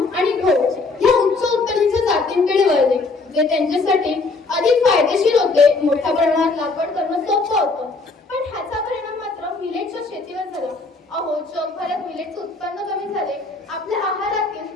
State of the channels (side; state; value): right; quieter; 3.7 dB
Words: आणि गहू या उच्च उत्पादनाच्या जातींकडे वळले, जे त्यांच्यासाठी अधिक फायदेशीर होते। मोठ्या प्रमाणात लागवड करणं सोपं होतं, पण ह्याचा परिणाम मात्र मिलेटच्या शेतीवर झाला। जगभरात मिलेटचे उत्पन्न कमी झाले, आपल्या